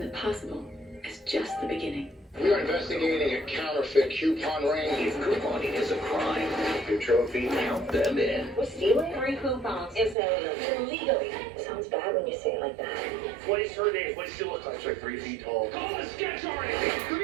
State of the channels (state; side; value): drops out; left; at 10.2 s